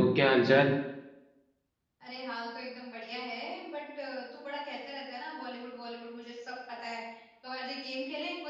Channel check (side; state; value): both; identical; correlation 1.00